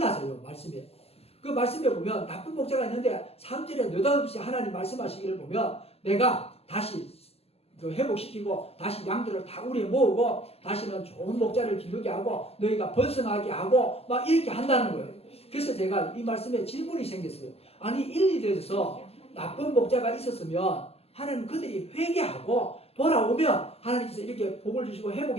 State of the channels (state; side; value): late; right; 0.29 ms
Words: 말씀이. 그 말씀에 보면 나쁜 목자가 있는데 3절에 느닷없이 하나님 말씀하시기를 보면 내가 다시 회복시키고 다시 양들을 다 우리에 모으고 다시는 좋은 목자를 기르게 하고 너희가 번성하게 하고 막 이렇게 한다는 거예요. 그래서 제가 이 말씀에 질문이 생겼어요. 아니 1, 2절에서 나쁜 목자가 있었으면 하나님 그들이 회개하고 돌아오면 하나님께서 이렇게 복을 주시고